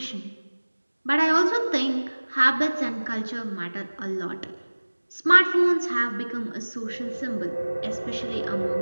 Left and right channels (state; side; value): inverted; both; correlation -1.00